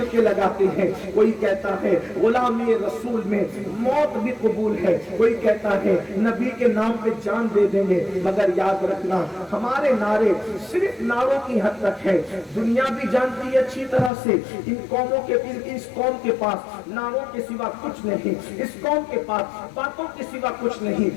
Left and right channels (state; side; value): drops out; right; at 14.1 s